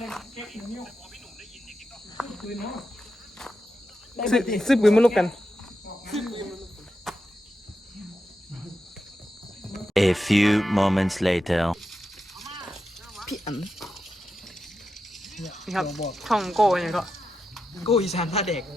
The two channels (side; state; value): both; normal; correlation 0.88